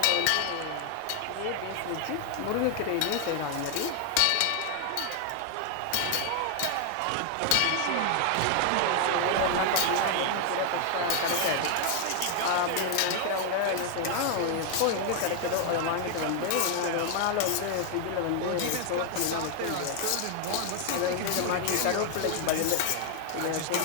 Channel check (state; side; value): different; both; correlation 0.00